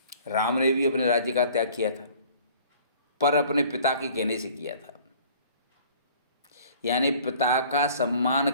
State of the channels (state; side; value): inverted; both; correlation -0.51